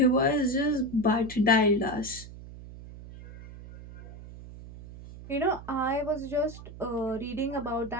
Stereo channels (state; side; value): noise; right; hum, 15 dB below the sound